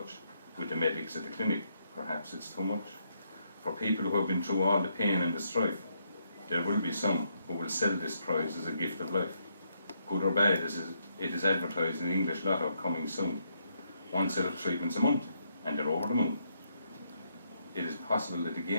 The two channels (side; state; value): both; inverted; correlation -0.76